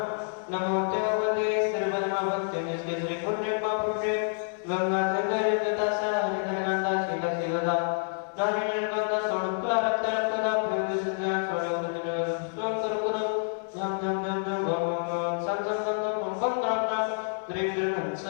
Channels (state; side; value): silent; right; 59 dB below the other